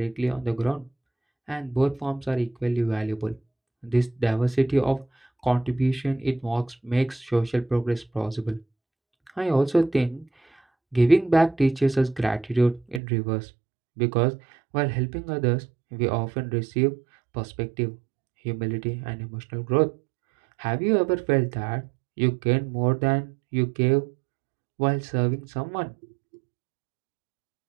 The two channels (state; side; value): drops out; left; at 13.0 s